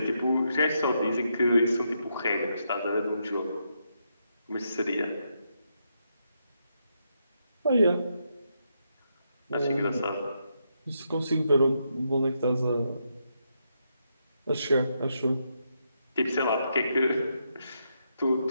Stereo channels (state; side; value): inverted; both; correlation -0.80